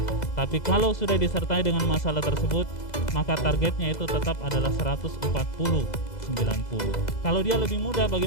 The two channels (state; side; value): late; right; 2.0 ms